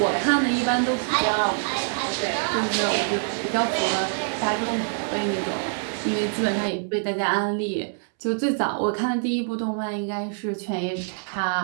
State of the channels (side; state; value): left; silent; 62 dB below the other